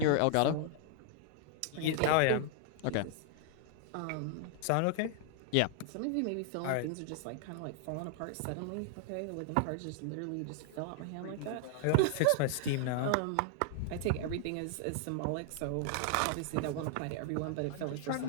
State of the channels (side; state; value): both; different; correlation 0.00